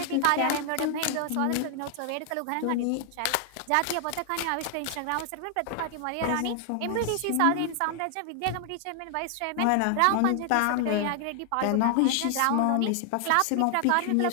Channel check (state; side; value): different; both; correlation 0.00